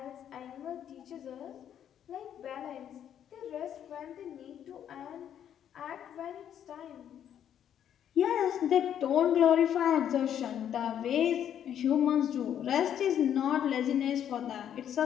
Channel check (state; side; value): quieter; right; 9.7 dB